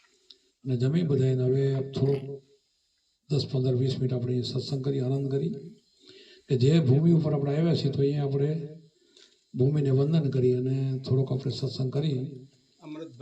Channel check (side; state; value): both; identical; correlation 1.00